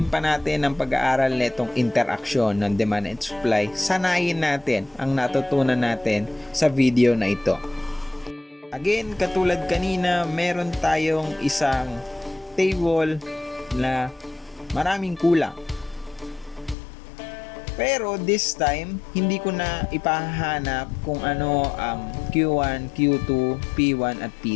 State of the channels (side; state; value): right; drops out; at 16.8 s